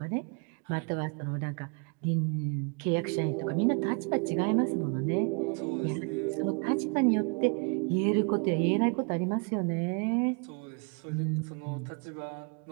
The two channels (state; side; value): quieter; left; 33.9 dB